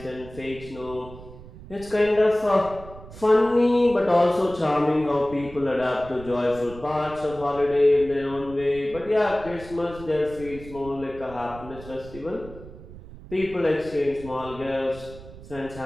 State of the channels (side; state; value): right; noise; rumble, 16 dB below the sound